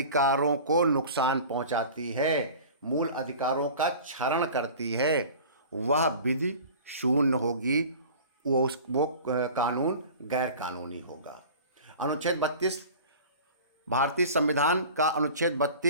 को नुकसान पहुंचाती है, मूल अधिकारों का क्षरण करती है, वह विधि शून्य होगी, वो कानून गैर कानूनी होगा। अनुच्छेद 32 भारतीय संविधान का अनुच्छेद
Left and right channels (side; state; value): both; inverted; correlation -0.40